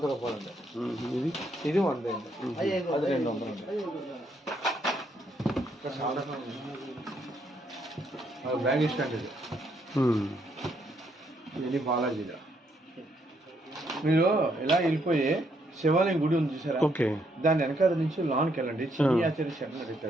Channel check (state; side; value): normal; both; correlation 0.73